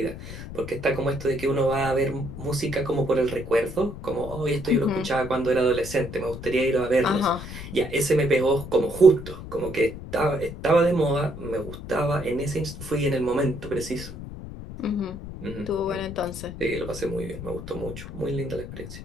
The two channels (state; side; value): noise; left; rumble, 11 dB below the sound